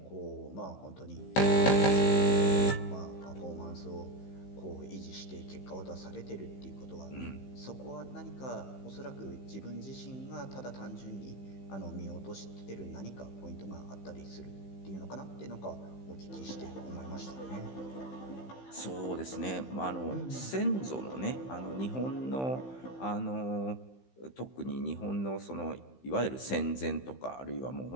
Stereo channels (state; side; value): late; right; 15 ms